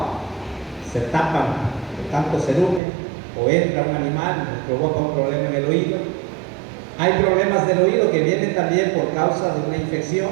Se tapan de tanto cerumen. o entra un animal y nos provoca un problema en el oído. Hay problemas del oído que vienen también por causa de una infección.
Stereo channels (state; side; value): drops out; left; at 2.8 s